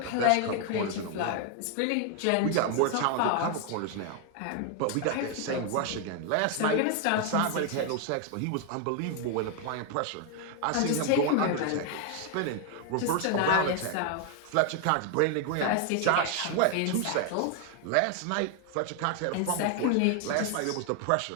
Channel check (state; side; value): different; both; correlation 0.01